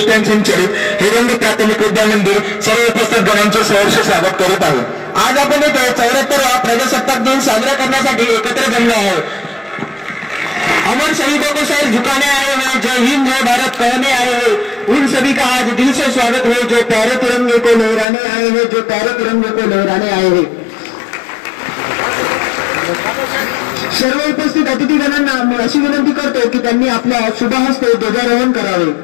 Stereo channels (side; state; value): right; drops out; at 18.1 s